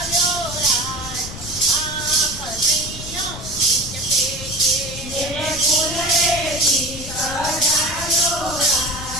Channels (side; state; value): left; noise; rumble, 12 dB below the sound